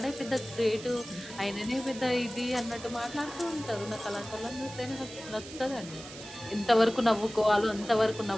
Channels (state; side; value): noise; right; hiss, 14 dB below the sound